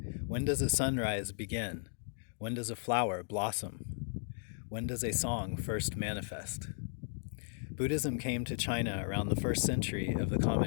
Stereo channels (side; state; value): right; silent; digital silence